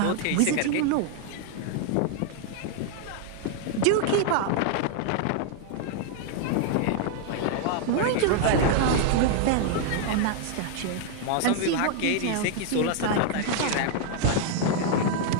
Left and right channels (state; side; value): different; both; correlation 0.00